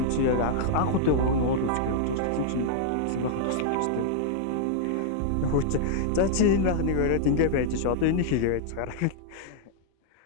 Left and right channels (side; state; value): both; different; correlation -0.01